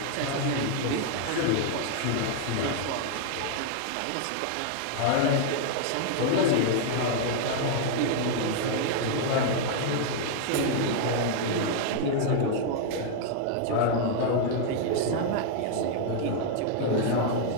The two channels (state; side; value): different; both; correlation 0.00